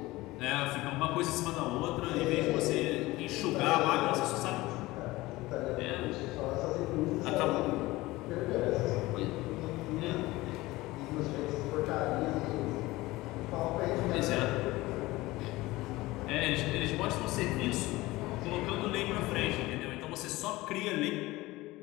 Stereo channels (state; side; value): quieter; right; 19.5 dB